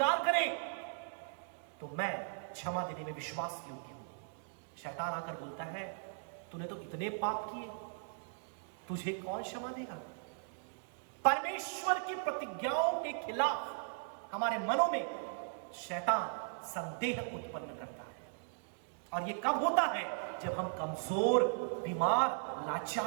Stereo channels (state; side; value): silent; left; digital silence